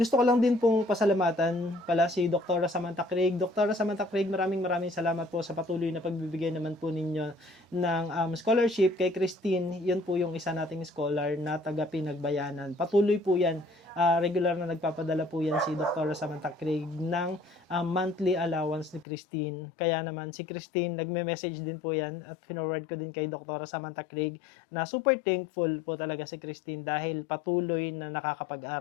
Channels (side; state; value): right; drops out; at 19.1 s